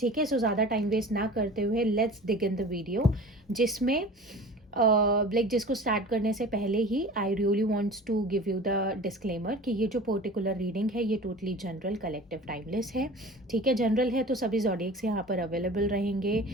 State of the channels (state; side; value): normal; both; correlation 0.39